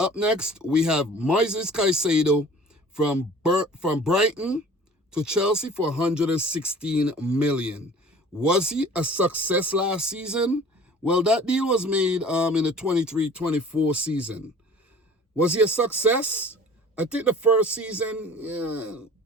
next, we have Moises Caicedo from Brighton to Chelsea for 116 million. Was he a success last season? Well, that deal was made in the 23-24 season. Was he a success? I think the first season, yeah,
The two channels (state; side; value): normal; both; correlation 0.46